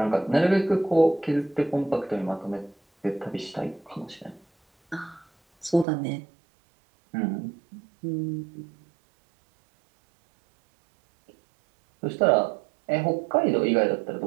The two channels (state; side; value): drops out; left; at 5.9 s